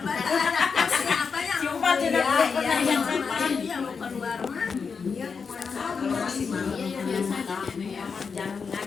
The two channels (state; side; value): quieter; right; 5.6 dB